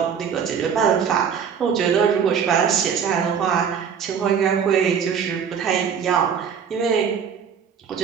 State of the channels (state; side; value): quieter; left; 7.2 dB